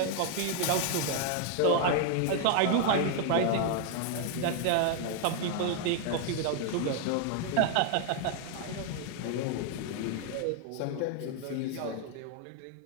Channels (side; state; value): both; different; correlation 0.00